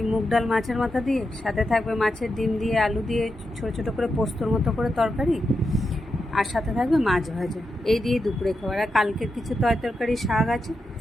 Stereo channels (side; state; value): both; normal; correlation 0.87